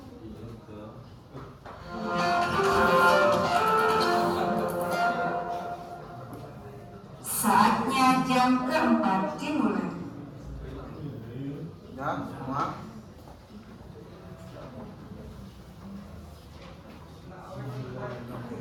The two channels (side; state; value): both; identical; correlation 1.00